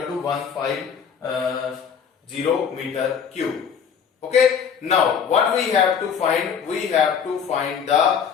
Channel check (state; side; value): quieter; right; 7.2 dB